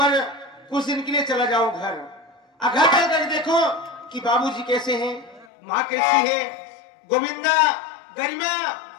कुछ दिन के लिए चला जाऊं घर। घर चल कर देखो कि बाबूजी कैसे हैं, माँ कैसी है, गोविंदा गरिमा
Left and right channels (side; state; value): right; drops out; at 5.5 s